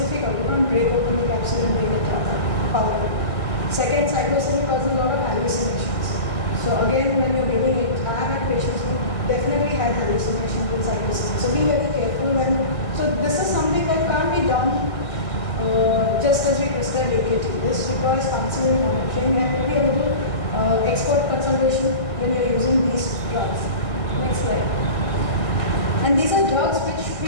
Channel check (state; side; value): late; right; 1.6 ms